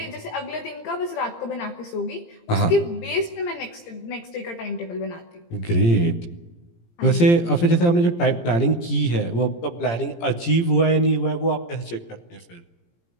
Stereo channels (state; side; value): late; right; 17 ms